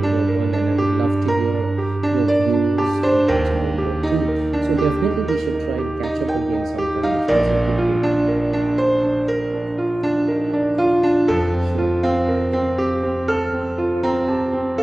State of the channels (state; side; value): normal; both; correlation 0.96